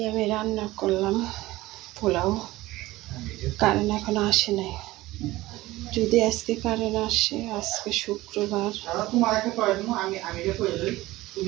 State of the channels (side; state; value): left; quieter; 18.2 dB